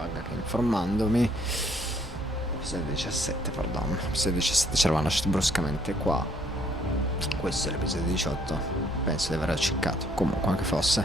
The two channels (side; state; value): both; normal; correlation 0.65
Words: che informandomi, episodio 17, perdono, episodio 17 ci eravamo lasciati bruscamente qua. Questo è l'episodio 18, penso di aver acciccato, comunque anche fosse.